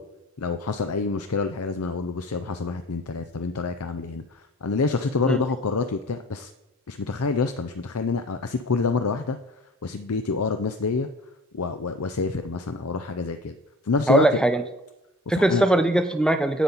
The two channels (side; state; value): both; normal; correlation 0.44